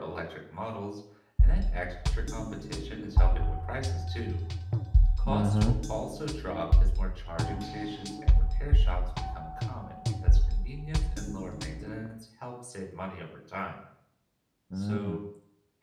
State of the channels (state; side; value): identical; both; correlation 1.00